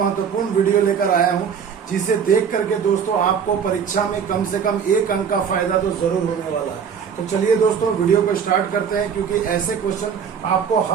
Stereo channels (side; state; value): left; quieter; 7.1 dB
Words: वीडियो लेकर आया हूं जिसे देख करके दोस्तों आपको परीक्षा में कम से कम एक अंक का फायदा तो जरूर होने वाला है। तो चलिए दोस्तों वीडियो को स्टार्ट करते हैं, क्योंकि ऐसे क्वेश्चन आपको